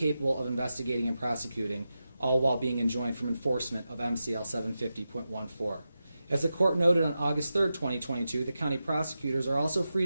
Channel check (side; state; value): both; inverted; correlation -0.91